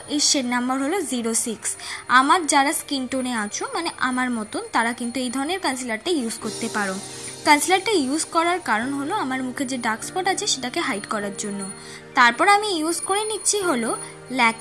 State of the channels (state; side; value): identical; both; correlation 1.00